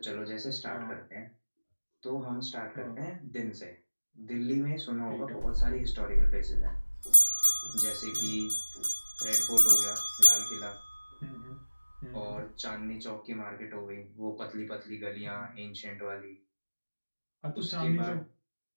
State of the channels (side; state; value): both; inverted; correlation -1.00